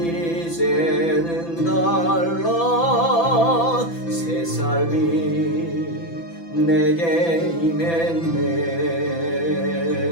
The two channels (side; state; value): right; late; 6.0 ms